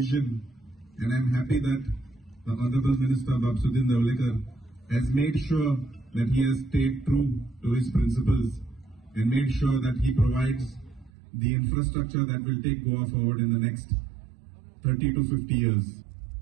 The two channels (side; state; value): left; drops out; at 11.1 s